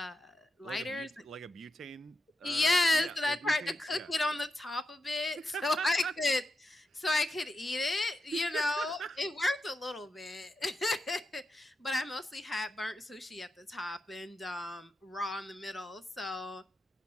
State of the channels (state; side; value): normal; both; correlation 0.86